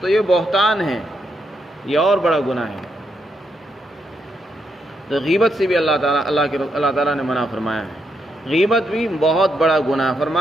یہ بہتان ہے، یہ اور بڑا گناہ ہے۔ تو غیبت سے بھی اللہ تعالیٰ نے منع فرمایا ہے۔ غیبت بھی بہت بڑا گناہ،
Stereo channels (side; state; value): both; normal; correlation 0.80